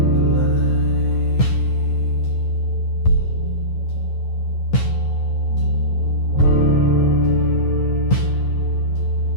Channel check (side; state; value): right; late; 9.7 ms